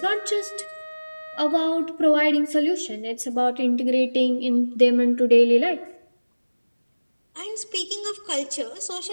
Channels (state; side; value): inverted; both; correlation -1.00